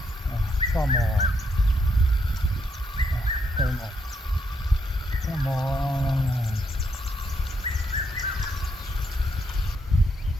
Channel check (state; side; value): normal; both; correlation 0.77